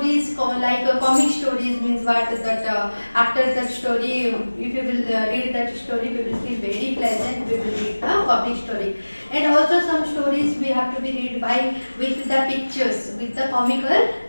like comic stories means what that after that story, if you will read that story, we will feel very pleasant. We will read the comic story, and also some stories we have to be read by with the pictures, with the comical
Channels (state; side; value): inverted; both; correlation -1.00